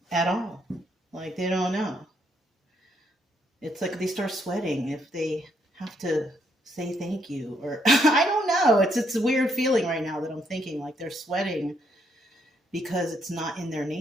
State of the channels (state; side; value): normal; both; correlation 0.73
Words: at all. Like, they don't know. It's like they start sweating if they have to say thank you, or I don't know. It's a weird feeling right now that I'm thinking like they're sweating because it's not in their